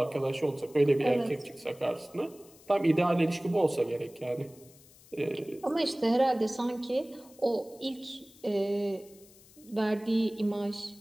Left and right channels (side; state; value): left; noise; hiss, 25 dB below the sound